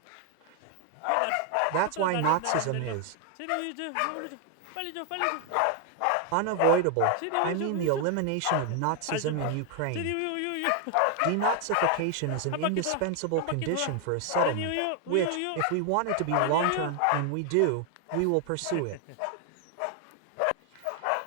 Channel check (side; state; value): both; different; correlation 0.00